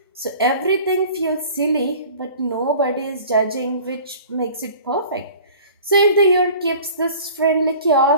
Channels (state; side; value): inverted; both; correlation -0.45